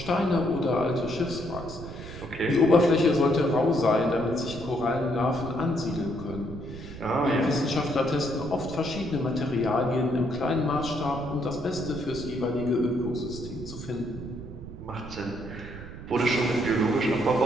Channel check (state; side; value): noise; right; rumble, 12 dB below the sound